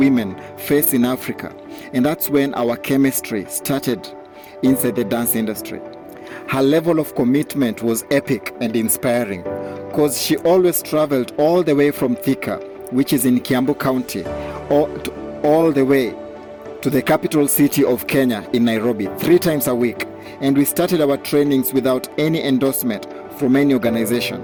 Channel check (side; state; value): both; identical; correlation 1.00